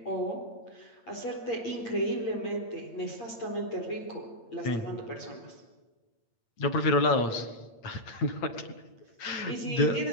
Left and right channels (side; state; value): right; late; 8.7 ms